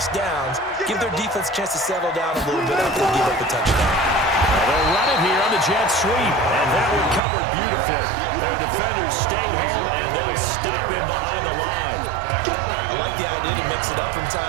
downs. Give their defense a chance to settle down a little bit after they give up a touchdown. They'll run it here on the jet sweep, and that one covered beautifully. Their defenders stayed home, and they'll stop him behind the line. I like the idea to mix it up from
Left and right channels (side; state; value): left; drops out; at 7.2 s